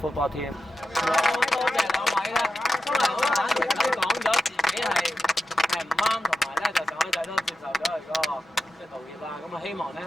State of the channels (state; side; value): normal; both; correlation 0.89